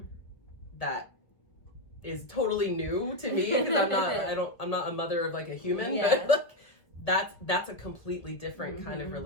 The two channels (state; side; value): late; right; 1.3 ms